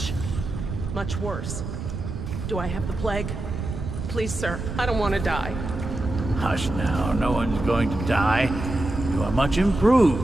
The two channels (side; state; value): right; noise; rumble, 6 dB below the sound